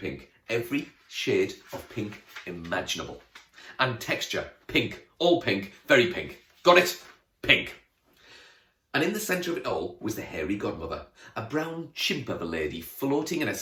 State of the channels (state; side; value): identical; both; correlation 1.00